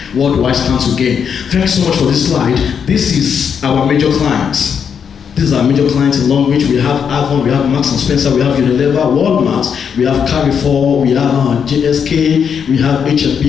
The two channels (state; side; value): quieter; right; 7.2 dB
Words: What do I stand to gain? Thanks so much for this slide. This is our major clients. These are major clients in Longrich. We have Avon, we have Marks and Spencer, we have Unilever, Walmart, we have Carrefour, we have JSK, we have